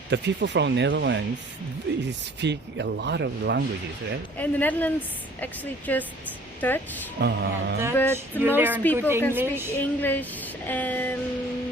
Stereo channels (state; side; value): normal; both; correlation 0.52